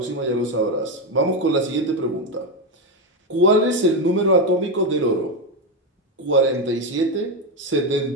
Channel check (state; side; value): normal; both; correlation 0.09